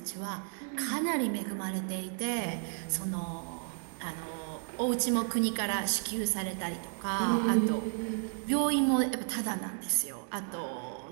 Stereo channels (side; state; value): left; silent; 56 dB below the other